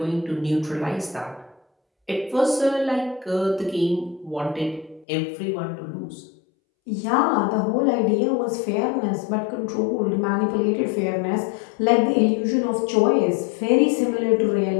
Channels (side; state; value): right; drops out; at 5.1 s